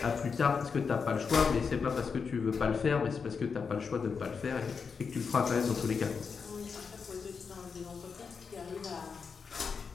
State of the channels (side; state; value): right; quieter; 5.6 dB